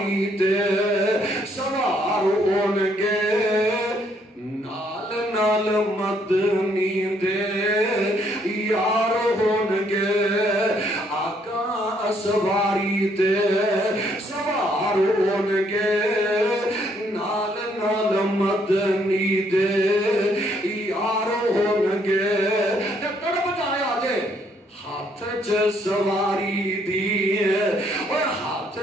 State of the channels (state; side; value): normal; both; correlation 0.69